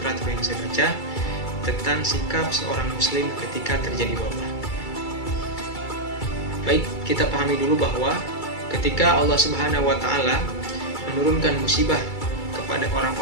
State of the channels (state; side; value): late; right; 2.3 ms